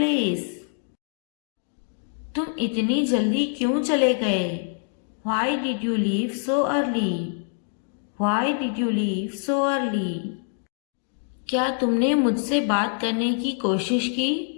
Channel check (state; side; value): silent; right; 62 dB below the other